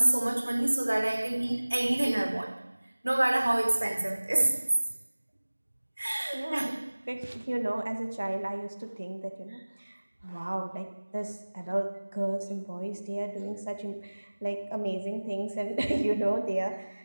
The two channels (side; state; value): both; inverted; correlation -1.00